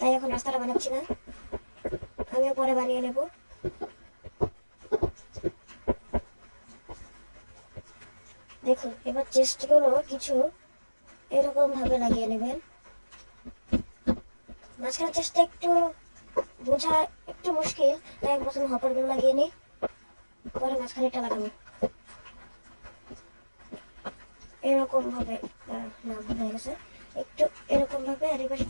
এখন রাস্তাটা বানাচ্ছি না, আমিও পরে বানিয়ে নেব। দেখুন, এবার চেস্টগুলো কিছু এরকম ভাবে লাগিয়ে নেবেন। মাঝখানে চেষ্টা একটু বোঝা একটু মুশকিল, তাই প্রথমে হপারগুলো লাগিয়ে নিই, পরে মাঝখানেটা লাগাবো এরকম ভাবে। না, ভুল হয়ে গেছে। একটু এরকম ভাবে, আর এই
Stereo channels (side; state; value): both; inverted; correlation -1.00